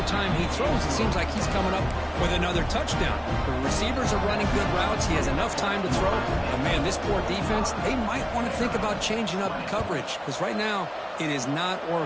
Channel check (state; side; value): identical; both; correlation 1.00